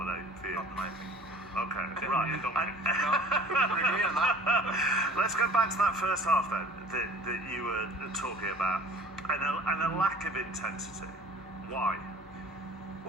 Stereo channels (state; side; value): normal; both; correlation 0.47